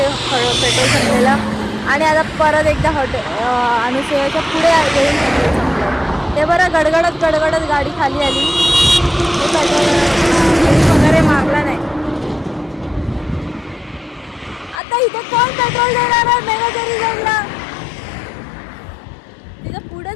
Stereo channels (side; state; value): right; drops out; at 14.8 s